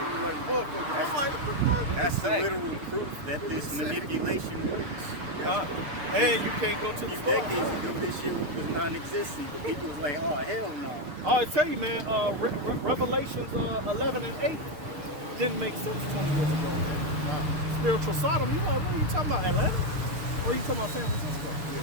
motherfucker. I'm like, what the fuck? That's the literal proof that this manipulation works. And you can't go to the store. Decades ago, this shit was non-existent. People was like, oh, hell no. I tell you, man, Revelations 11 and 8 didn't make sense 20 years ago, man. Spiritual Sodom, you like, what are you talking about, Atlanta? Oh, you talking about San Francisco?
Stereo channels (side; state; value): left; late; 6.6 ms